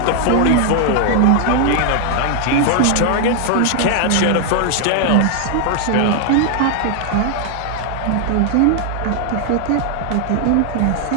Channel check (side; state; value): both; different; correlation 0.00